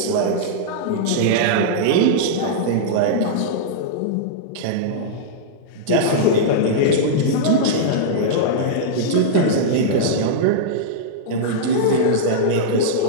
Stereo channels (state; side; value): different; both; correlation -0.02